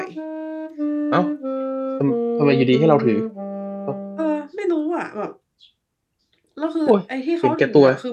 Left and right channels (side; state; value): both; identical; correlation 1.00